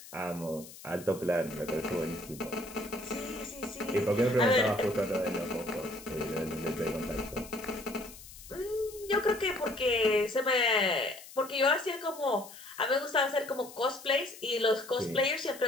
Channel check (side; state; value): left; noise; hiss, 17 dB below the sound